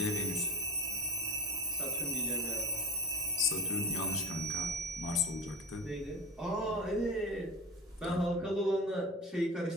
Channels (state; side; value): normal; both; correlation 0.33